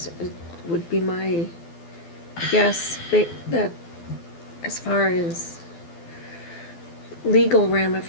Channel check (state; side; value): late; right; 12 ms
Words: it would be my guess, that as far as legal